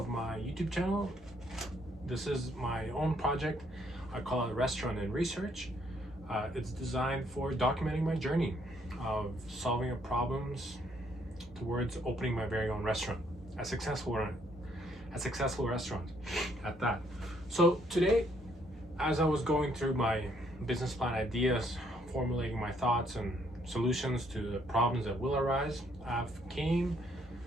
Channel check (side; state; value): both; normal; correlation 0.69